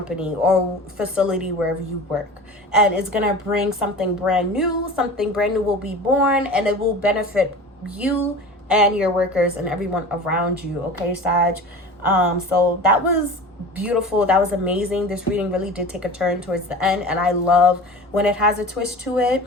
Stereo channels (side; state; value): both; normal; correlation 0.36